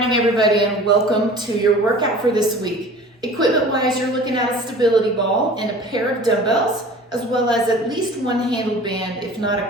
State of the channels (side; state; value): both; normal; correlation 0.43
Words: everybody, and welcome to your workout for this week. Equipment-wise, you're looking at a stability ball and a pair of dumbbells, as well as at least one handled band, if not